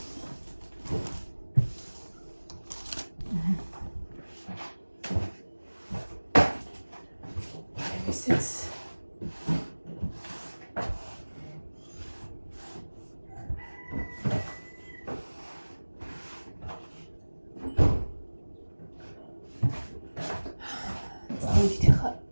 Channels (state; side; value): inverted; both; correlation -1.00